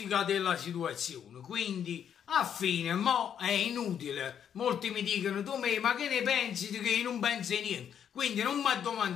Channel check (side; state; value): right; quieter; 8.7 dB